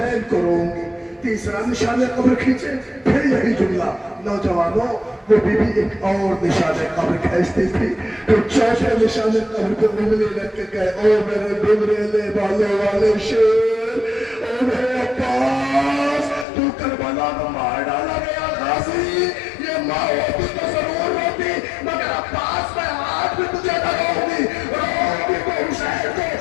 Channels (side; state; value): right; drops out; at 16.4 s